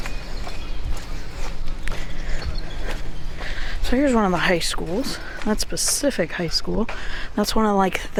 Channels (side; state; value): both; identical; correlation 1.00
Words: So here's one of the high schools. That's Pacific High School. That's one of like